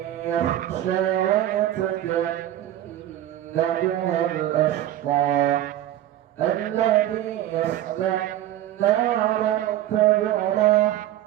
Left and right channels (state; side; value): quieter; left; 12.9 dB